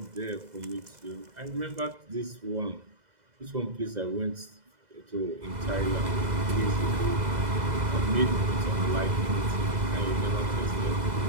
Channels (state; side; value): late; left; 2.0 ms